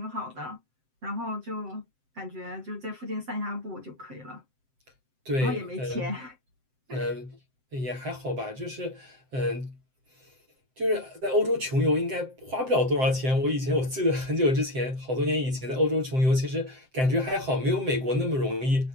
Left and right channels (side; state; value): left; late; 7.7 ms